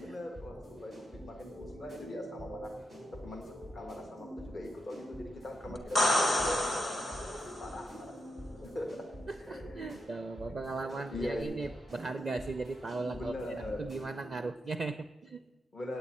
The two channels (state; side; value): normal; both; correlation 0.85